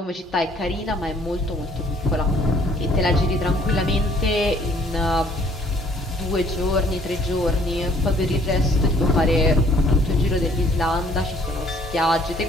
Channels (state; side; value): normal; both; correlation 0.60